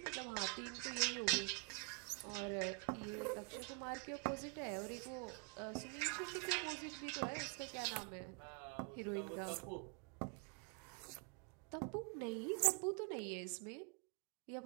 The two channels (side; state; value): left; quieter; 32.2 dB